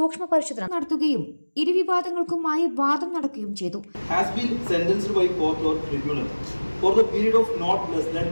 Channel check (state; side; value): inverted; both; correlation -1.00